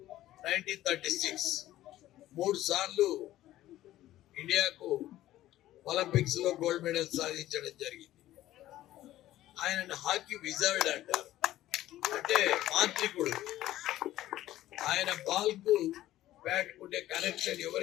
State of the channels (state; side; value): quieter; right; 14.4 dB